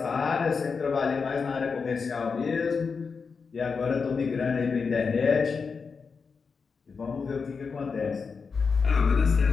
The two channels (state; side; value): quieter; right; 5.2 dB